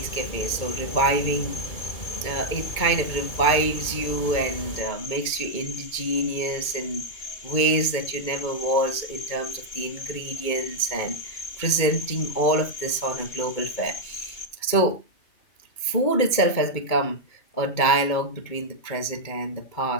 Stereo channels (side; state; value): right; late; 2.2 ms